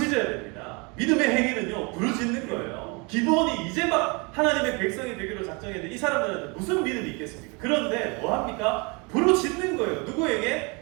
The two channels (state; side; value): quieter; left; 30.1 dB